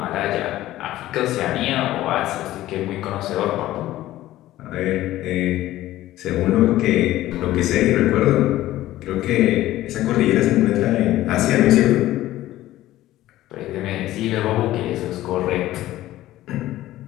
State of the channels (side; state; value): right; quieter; 15.1 dB